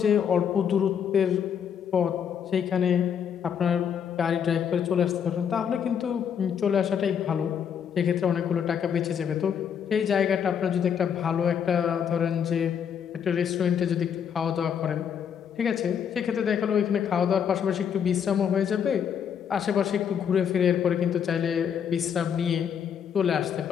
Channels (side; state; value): right; quieter; 7.9 dB